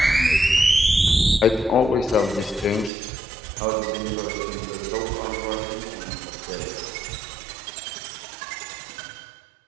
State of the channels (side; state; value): left; drops out; at 2.9 s